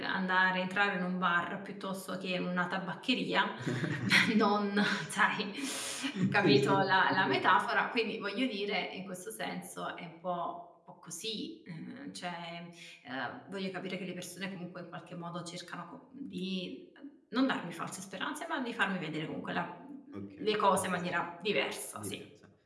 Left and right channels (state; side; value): identical; both; correlation 1.00